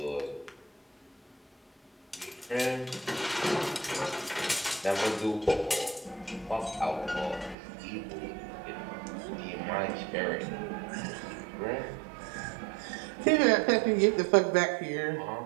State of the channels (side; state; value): left; drops out; at 7.6 s